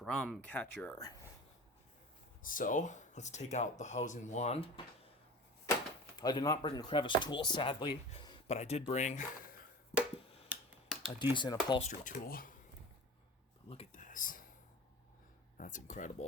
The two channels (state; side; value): normal; both; correlation 0.37